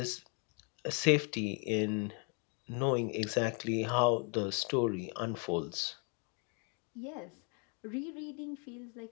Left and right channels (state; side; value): quieter; right; 37.3 dB